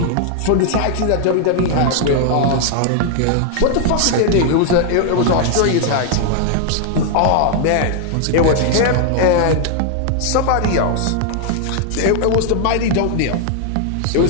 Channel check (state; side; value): different; both; correlation 0.00